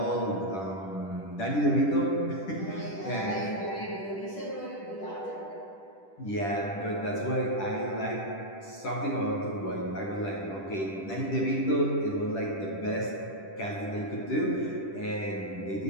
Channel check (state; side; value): late; right; 10 ms